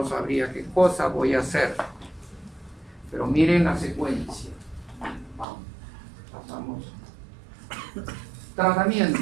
sabría qué cosa voy a hacer. Pero miren la secuencia. Vamos, pasamos.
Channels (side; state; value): left; drops out; at 5.5 s